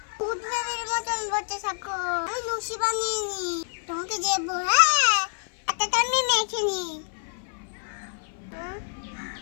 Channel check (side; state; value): right; silent; 56 dB below the other